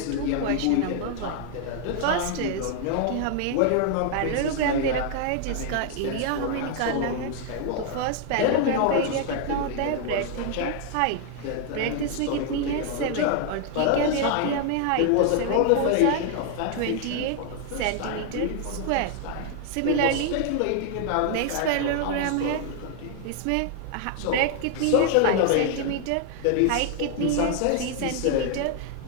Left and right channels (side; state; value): both; different; correlation 0.00